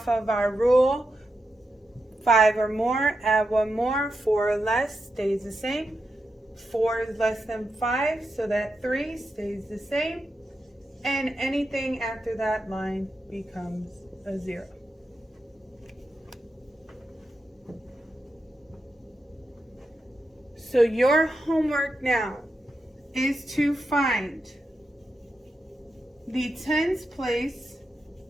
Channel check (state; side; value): normal; both; correlation 0.87